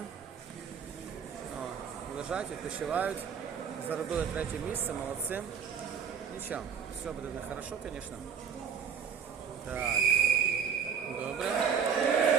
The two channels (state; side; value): quieter; left; 7.1 dB